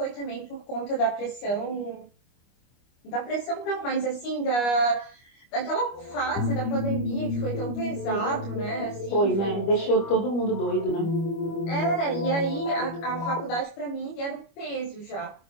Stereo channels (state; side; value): late; right; 25 ms